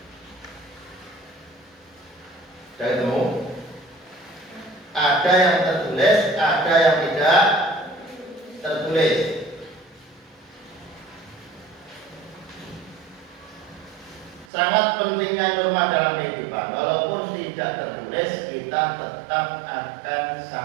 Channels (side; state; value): left; drops out; at 14.5 s